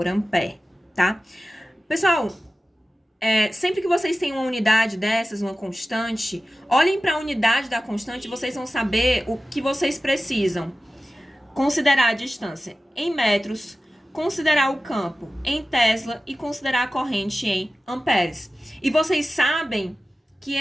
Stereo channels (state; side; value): normal; both; correlation 0.95